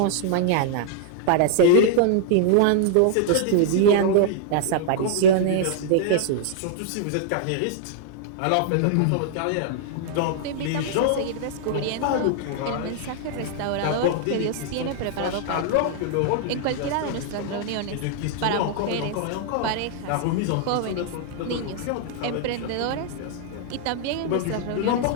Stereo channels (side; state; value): both; different; correlation -0.01